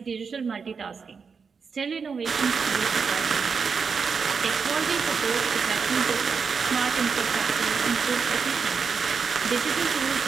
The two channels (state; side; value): quieter; left; 5.6 dB